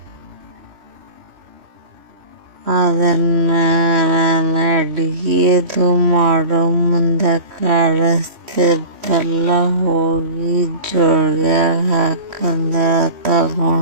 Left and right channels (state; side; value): late; left; 3.1 ms